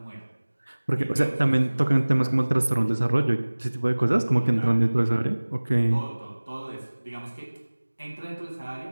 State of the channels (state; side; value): inverted; both; correlation -1.00